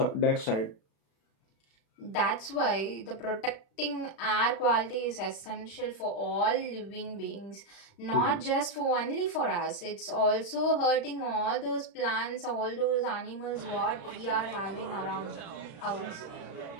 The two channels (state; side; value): late; right; 35 ms